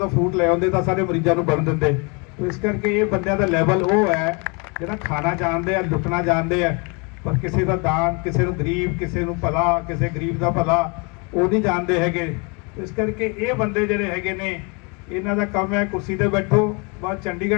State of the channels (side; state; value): right; quieter; 31.9 dB